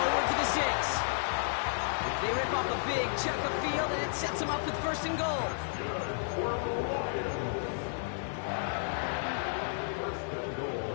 to the 6. They rip off a big chunk of field, and it sets him up with 1st and goal.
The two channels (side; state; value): right; silent; 56 dB below the other